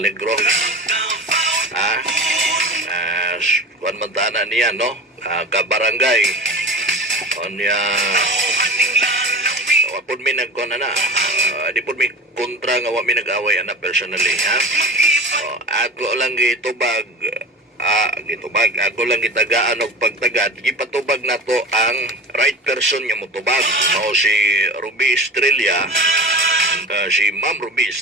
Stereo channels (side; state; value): both; normal; correlation 0.31